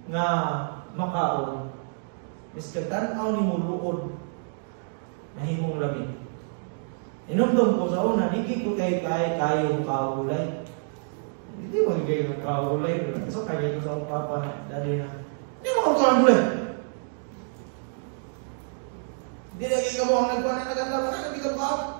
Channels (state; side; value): silent; left; digital silence